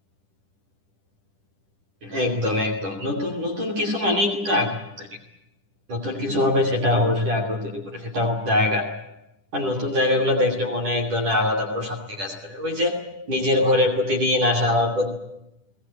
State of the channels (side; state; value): left; late; 10 ms